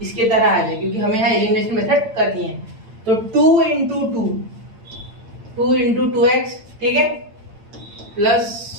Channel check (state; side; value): late; left; 8.8 ms